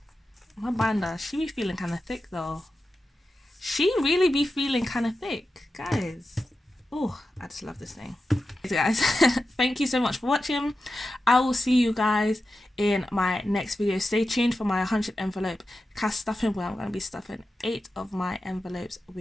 My binder, she be feeling kind of thick though. She really be feeling kind of thick, guys. Oh, I just love this thing. Guys, thank you so much for watching. I will see you guys in my next video. Stay tuned for my 100 envelope cash stuffing, where I'm going to be stuffing 8 of my envelopes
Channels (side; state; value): both; normal; correlation 0.91